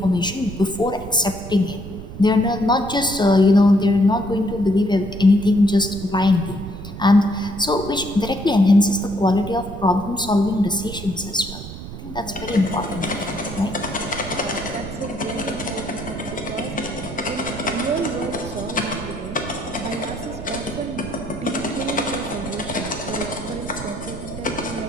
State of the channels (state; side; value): noise; right; rumble, 11 dB below the sound